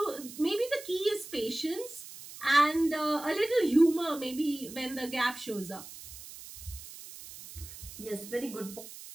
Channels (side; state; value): right; noise; hiss, 14 dB below the sound